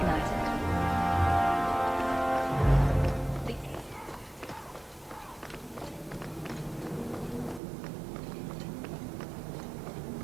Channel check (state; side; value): drops out; left; at 7.6 s